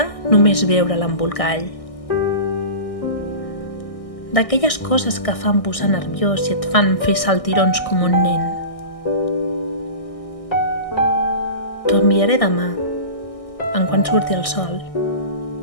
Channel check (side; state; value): right; late; 1.6 ms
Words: només veure l'embolcall. D'aquelles coses que fan posar nerviós i et fan fer saltirons com un nen. T'ho enviaré demà, en quan surti el sol.